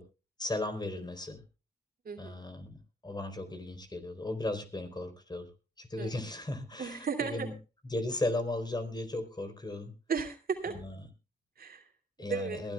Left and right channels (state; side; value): normal; both; correlation 0.63